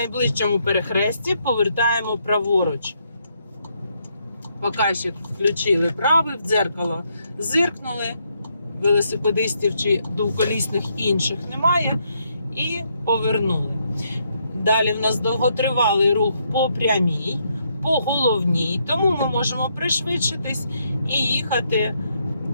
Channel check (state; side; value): inverted; both; correlation -0.75